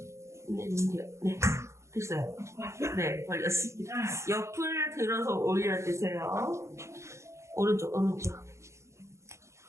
네. 됐어요. 네, 걸렸습니다. 옆을 들어서 올려 주세요. 오른쪽.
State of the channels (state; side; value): late; left; 0.14 ms